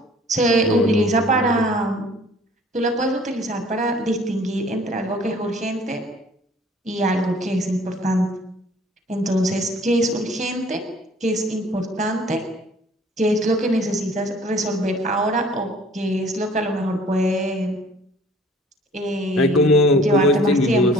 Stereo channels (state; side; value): normal; both; correlation 0.53